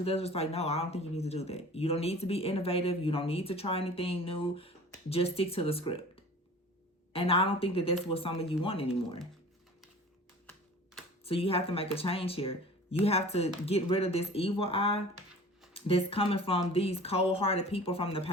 that's just like, no, I don't think you need to do that. You don't need to be innovative. You don't need to try anything new. Just stick to the script. And I don't think that that's what some of you want anymore. So you have to make a change here. You have to get rid of this evil eye that's coming from these cold-hearted people from the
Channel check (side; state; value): both; normal; correlation 0.42